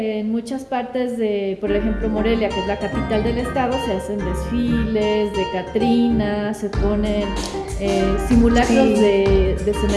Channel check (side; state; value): both; identical; correlation 1.00